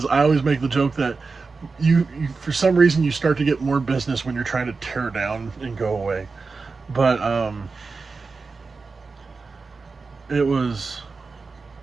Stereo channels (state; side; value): quieter; left; 4.3 dB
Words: I always make the joke that you for some reason you start to get more business when you're trying to tear down and go away. But it was